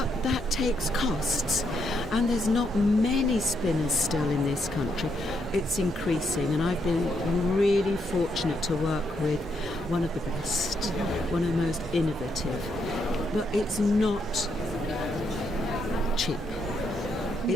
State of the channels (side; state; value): both; normal; correlation 0.77